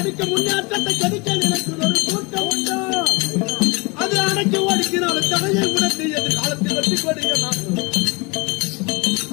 முன்னேற்றத்தை கெடுக்க நினைக்கும் ஒரு கூட்டம் உண்டோ அது அடக்கி ஒடுக்கினாலும் தடையை உடத்து எதிர்காலத்தில் வெற்றி கொடிய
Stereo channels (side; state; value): right; quieter; 27.4 dB